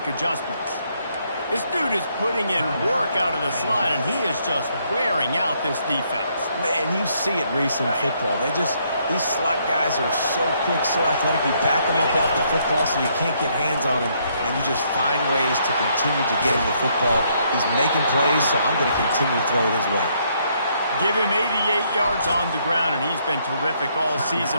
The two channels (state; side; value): inverted; both; correlation -0.71